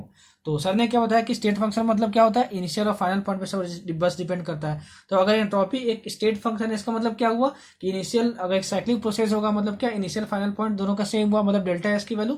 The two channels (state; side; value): identical; both; correlation 1.00